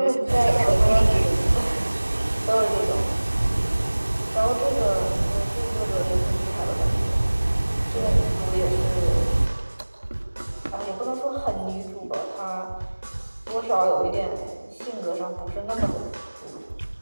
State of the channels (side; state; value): both; inverted; correlation -1.00